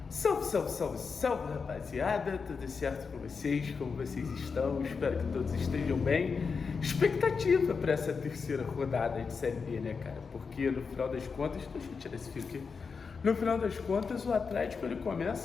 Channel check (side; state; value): right; quieter; 5.3 dB